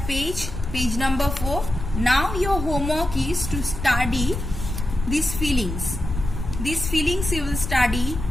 page number 4. Now your homework is to study these feelings you will study,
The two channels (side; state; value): left; noise; rumble, 6 dB below the sound